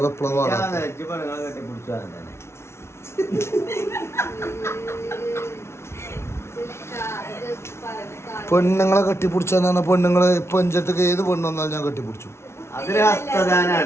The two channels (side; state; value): right; late; 0.13 ms